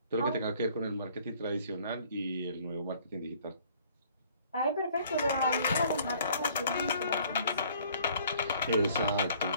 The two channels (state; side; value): inverted; both; correlation -0.57